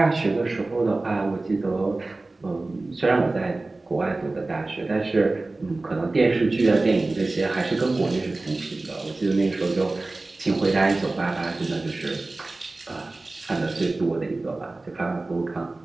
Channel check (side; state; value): left; quieter; 3.2 dB